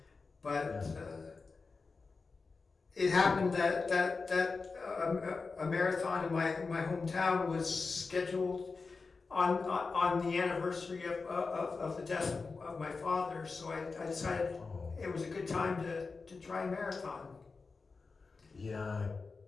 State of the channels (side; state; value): right; quieter; 4.3 dB